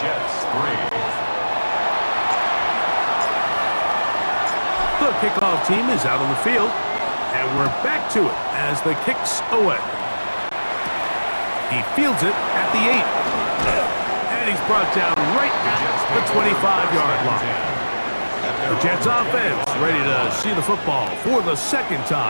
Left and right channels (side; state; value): both; inverted; correlation -1.00